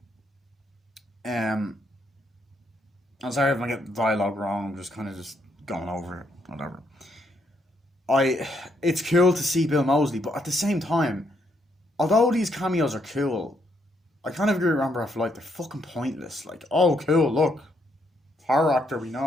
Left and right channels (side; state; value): both; normal; correlation 0.75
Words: um, I'm sorry if I get the dialogue wrong. I'm just kind of just going over it, whatever. I It's cool to see Bill Mosley, but at the same time, although these cameos are cool, I kind of agree with Rambo for like they're fucking pointless. Like, oh cool, look, horror actor we